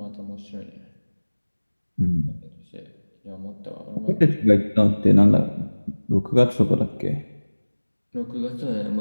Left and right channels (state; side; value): inverted; both; correlation -1.00